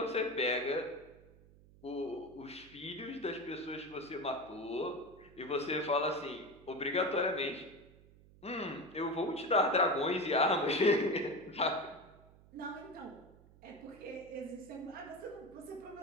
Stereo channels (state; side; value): noise; right; hum, 24 dB below the sound